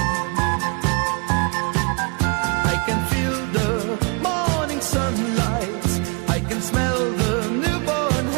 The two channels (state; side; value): quieter; left; 33.9 dB